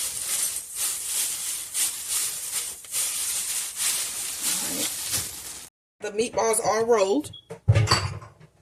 The meatballs are rolled.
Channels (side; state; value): both; identical; correlation 1.00